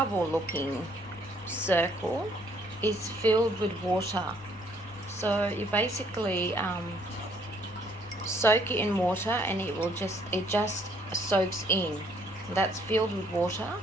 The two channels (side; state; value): left; noise; rumble, 23 dB below the sound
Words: looking circle is filled with water. So you basically soak it in water and it just soaks in. That's filled with water.